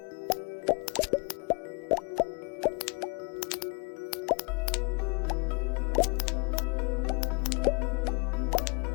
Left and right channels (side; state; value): right; quieter; 31.6 dB